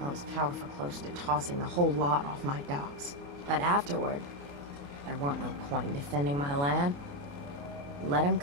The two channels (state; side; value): late; left; 28 ms